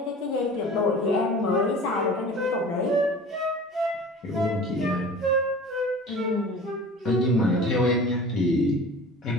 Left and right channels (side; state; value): both; normal; correlation 0.40